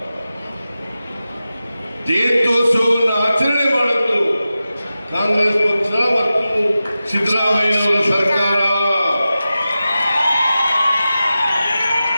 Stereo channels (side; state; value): both; inverted; correlation -0.93